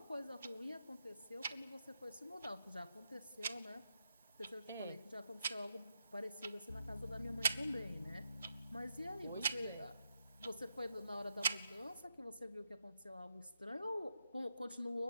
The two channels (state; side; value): inverted; both; correlation -0.84